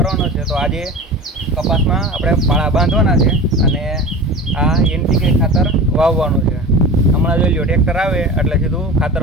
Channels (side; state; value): both; normal; correlation 0.34